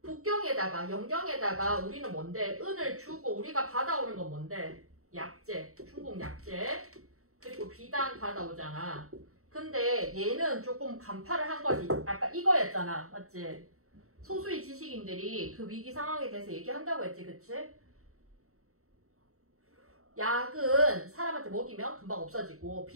북경에다가 연경에다가 우리는 뭔데? 은을 주고 우리가 받아오는 건 뭔데? 약재, 중국 약재. 그리고 비단 받아오잖아. 근데 얘는 조금 간파를 한 거지. 아까 이거였잖아. 맞지? 소수의 지식인들이 그 위기 상황에 대해서 얘기한다고 했지. 그치? 약은 사람한테 먹이면 금방 없어지고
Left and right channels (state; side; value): late; left; 0.64 ms